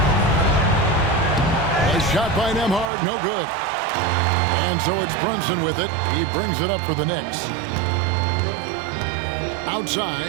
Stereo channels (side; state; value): left; drops out; at 2.9 s